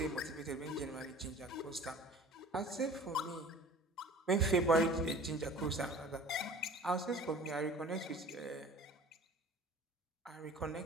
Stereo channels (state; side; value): normal; both; correlation 0.45